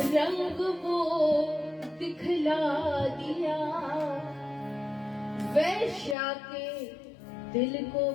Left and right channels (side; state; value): right; drops out; at 6.2 s